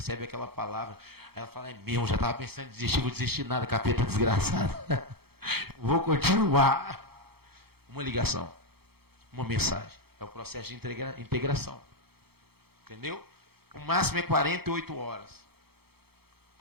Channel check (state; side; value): late; left; 0.96 ms